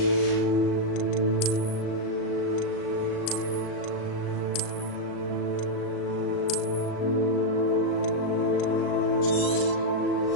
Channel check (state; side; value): late; right; 38 ms